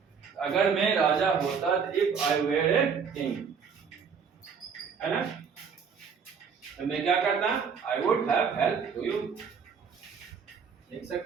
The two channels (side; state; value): left; quieter; 6.2 dB